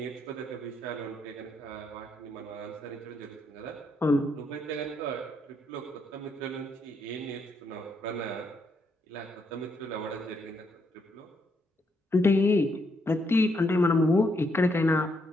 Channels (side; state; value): both; normal; correlation 0.76